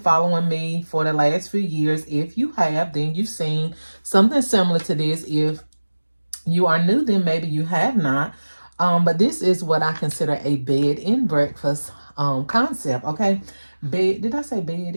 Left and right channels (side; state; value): both; inverted; correlation -1.00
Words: me for the last few years. If you have, then you've seen something similar to this. If you are new, then maybe you have not. But this is what I consider a bed and breakfast concept. Okay. Did I say bed